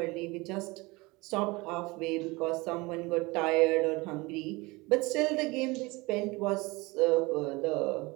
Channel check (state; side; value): quieter; left; 23.7 dB